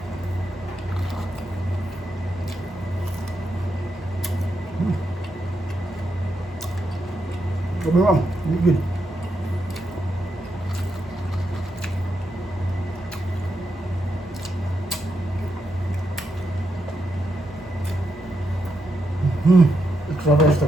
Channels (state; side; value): normal; both; correlation 0.82